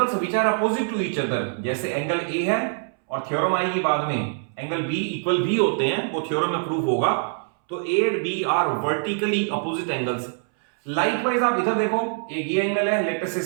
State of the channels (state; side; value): silent; left; 63 dB below the other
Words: which are opposite to each other. जैसे एंगल ए है और थ्योरम आएगी बाद में एंगल बी इक्वल बी होते हैं, वो थ्योरम में प्रूफ होगा। तो A and B are vertically opposite angles. Likewise आप इधर देखो, एक ये एंगल है लेटर से